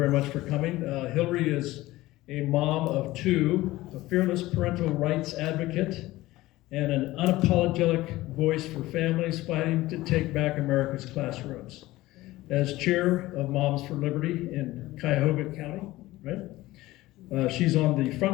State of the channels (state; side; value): quieter; right; 17.8 dB